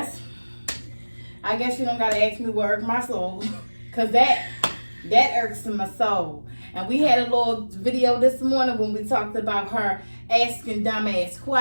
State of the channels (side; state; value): both; inverted; correlation -1.00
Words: I guess you don't gotta ask me what irks my soul, cause that irks my soul. And we had a little video this morning when we talked about her asking dumbass